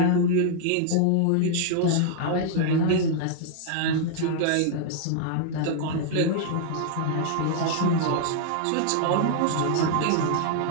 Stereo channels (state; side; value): different; both; correlation 0.00